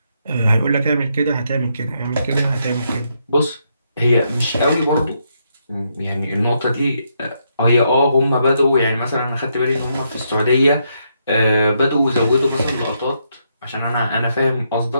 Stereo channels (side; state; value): both; inverted; correlation -0.78